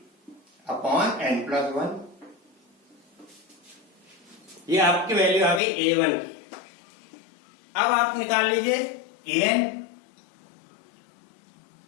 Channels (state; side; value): drops out; right; at 5.6 s